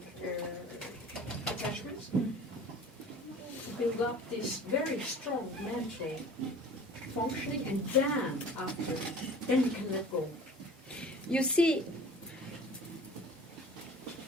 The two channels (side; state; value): both; normal; correlation 0.44